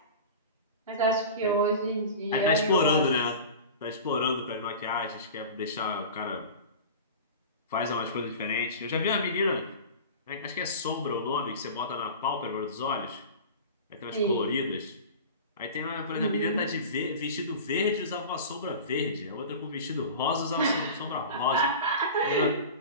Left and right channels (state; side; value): inverted; both; correlation -0.34